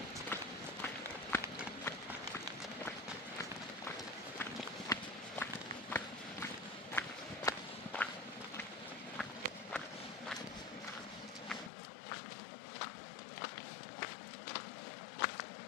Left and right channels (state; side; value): drops out; right; at 11.7 s